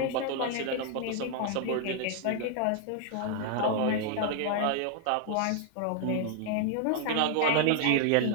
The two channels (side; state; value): both; different; correlation 0.00